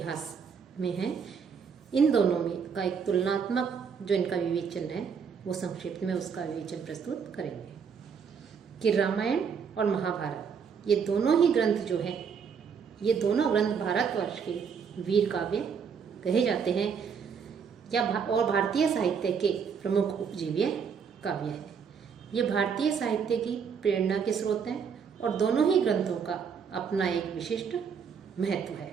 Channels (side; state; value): left; quieter; 6.6 dB